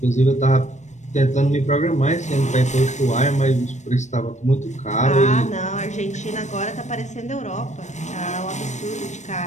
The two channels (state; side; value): late; right; 0.34 ms